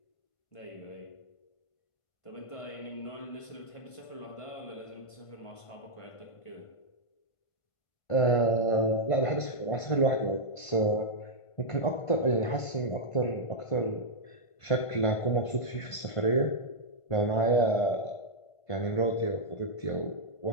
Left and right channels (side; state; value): right; late; 1.5 ms